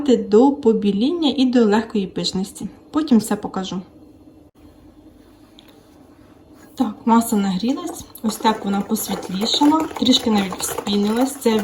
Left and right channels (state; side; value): identical; both; correlation 1.00